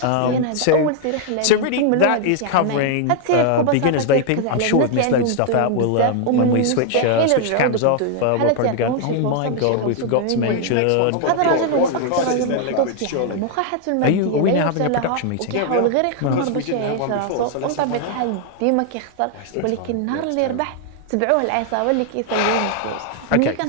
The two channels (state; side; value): different; both; correlation 0.00